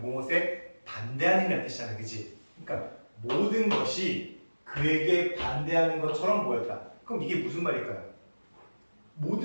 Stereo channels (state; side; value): inverted; both; correlation -1.00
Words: 반대하는이라는 뜻이잖아, 그치? 그러니까 모든 것이 그에게 반대하는 것처럼 보였다. 그럼 이게 무슨 말일까요?